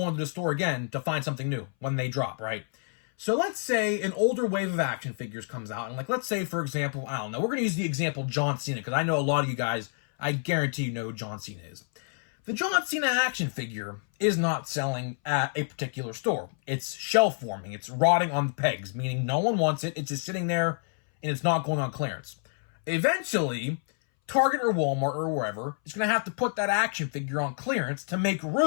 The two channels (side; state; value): right; silent; 59 dB below the other